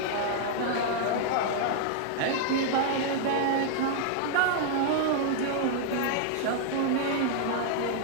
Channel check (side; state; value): both; different; correlation -0.01